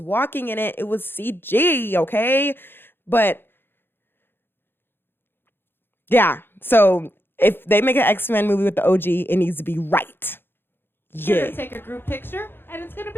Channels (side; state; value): right; late; 0.10 ms